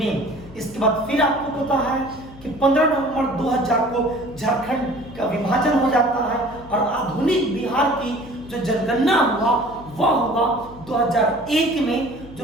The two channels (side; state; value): left; noise; hum, 19 dB below the sound